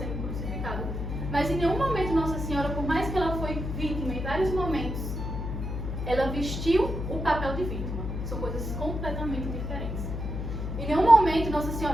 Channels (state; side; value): noise; left; hum, 4 dB below the sound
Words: crucificado. Mas em nenhum momento Nossa Senhora, por mais que ela foi vítima em vários momentos, ela vestiu o papel de vítima. São coisas completamente diferentes. Em nenhum momento Nossa